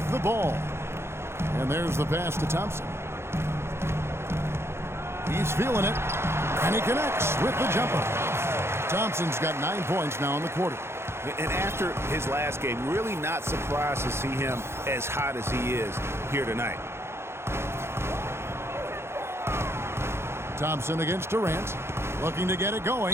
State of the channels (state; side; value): late; left; 0.12 ms